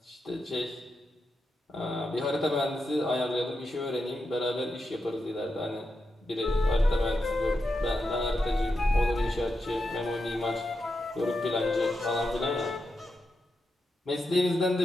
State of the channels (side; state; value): both; normal; correlation 0.87